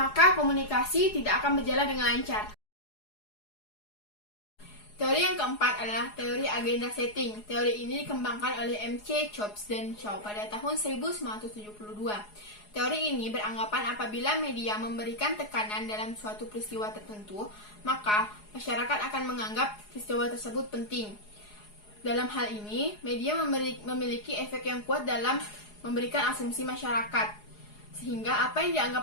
komunikasi tidak akan berjalan dengan lancar. Teori yang keempat adalah teori agenda setting. Teori ini dikembangkan oleh M.C. Chops dan Shaw pada tahun 1972. Teori ini beranggapan apabila media memberikan tekanan dalam suatu peristiwa tertentu, maka masyarakat akan menganggap peristiwa tersebut penting. Dalam hal ini, media memiliki efek yang kuat dalam memberikan asumsi masyarakat, sehingga apa yang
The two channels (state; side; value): late; right; 4.8 ms